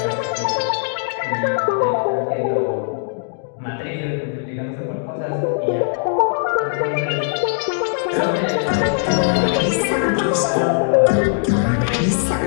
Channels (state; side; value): silent; right; digital silence